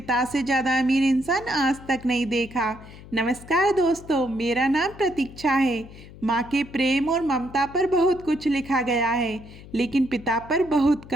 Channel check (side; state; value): left; noise; hum, 18 dB below the sound